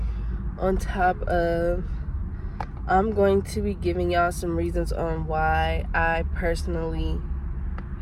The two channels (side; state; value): both; identical; correlation 1.00